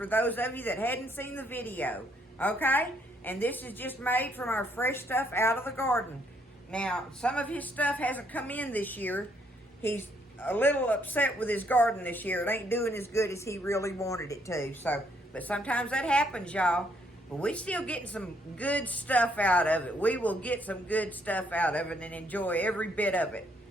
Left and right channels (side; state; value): both; normal; correlation 0.70